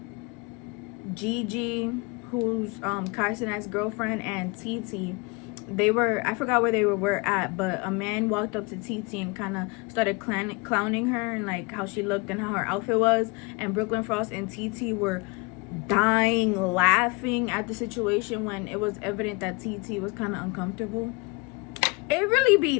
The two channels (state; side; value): quieter; right; 28.5 dB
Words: Gigi, who's Kai Cenat's girlfriend, and TT. They were, I forgot where they were at, but a man walked up to TT and kind of started clowning her and like how she looked and how her outfit was, and Brooklyn Frost and TT were dying laughing at the situation when it was evident that TT was kind of uncomfortable. It really be